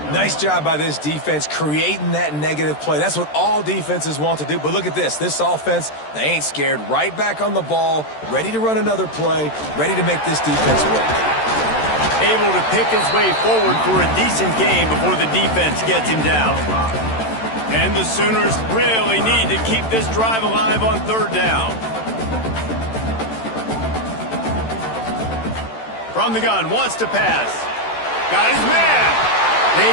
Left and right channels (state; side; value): late; right; 13 ms